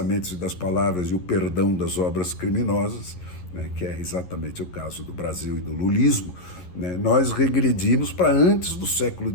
e das palavras e o perdão das obras criminosas, né, que é exatamente o caso do Brasil e do lulismo, né, nós regredimos para antes do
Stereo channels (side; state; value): right; late; 11 ms